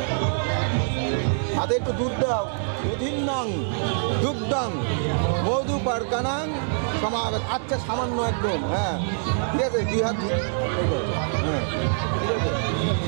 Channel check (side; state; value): left; silent; 62 dB below the other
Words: হাতে একটু দুধ দাও। দুধিন্নং দুগ্ধং মধু পারকানাং সমাগত। আচ্ছা সামান্য একদম, হ্যাঁ ঠিক আছে। দুই হাত হ্যাঁ ঠিক আছে।